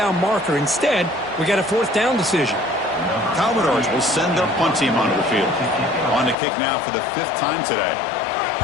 marker. Instead, we got a fourth down decision. Commodores will send their punt team onto the field. On to kick now for the 5th time today.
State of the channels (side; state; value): right; drops out; at 6.4 s